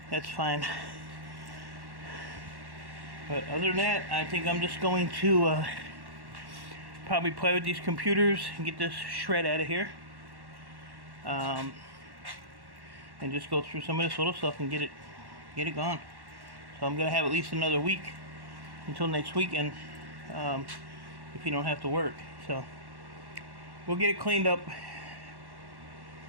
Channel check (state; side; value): late; left; 1.1 ms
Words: that's fine. But other than that, I think I'm just going to probably play with these computers and get this shred out of here. And just go through some of this little stuff and get it gone. So I'm gonna have at least another week until next weekend, if you don't have to work. So we'll get it cleaned up a